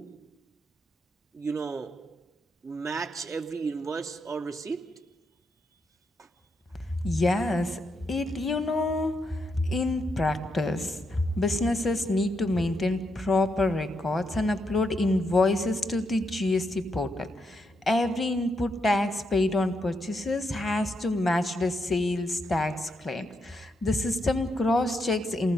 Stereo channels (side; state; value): both; normal; correlation 0.81